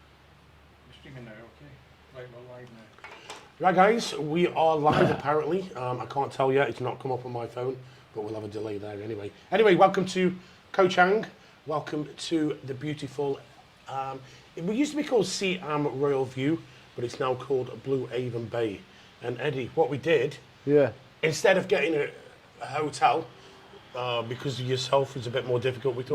Right, guys, we are live apparently. I can't tell yet, it's not come up on my phone, but we'll have a delay there anyway. Anyway, welcome to Koh Chang. Welcome to the beautiful, it used to be called Siam Royal View, but it's now called Blue Avon Bay. And Eddie, what we did, instead of getting a hotel, because of yourself is a bit more difficult, we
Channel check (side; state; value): both; identical; correlation 1.00